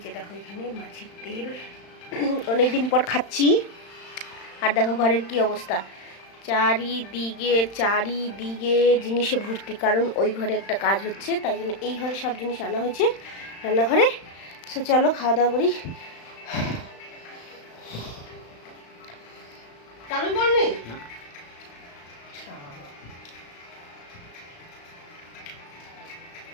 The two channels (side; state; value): right; late; 35 ms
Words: যে দেখো এখানে মাছের তেল। অনেকদিন পর খাচ্ছি। আর দেখো ঘরের কি অবস্থা, চারিদিকে জিনিসে ভর্তি, কারণ ওই ঘরে একটা কাজ হচ্ছে, তাই জন্য এই ঘরে সব জিনিস আনা হয়েছে রান্নাঘরে। সো চলো খাওয়া দাওয়া করি। চালু করনি